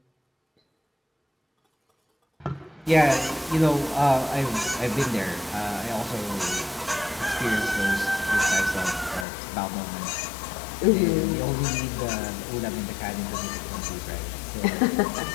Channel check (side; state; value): right; drops out; at 9.2 s